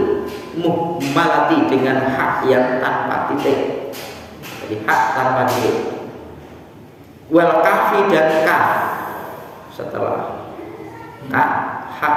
muhmalati, dengan hak yang tanpa titik. Jadi hak tanpa titik. Wal kafi dan kaf, setelah hak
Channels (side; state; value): both; identical; correlation 1.00